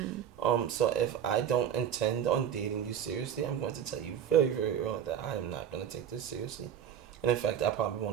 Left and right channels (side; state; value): left; quieter; 9.2 dB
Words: So if I don't intend on dating you seriously, I'm going to tell you very, very early that I am not going to take this seriously. And in fact, I probably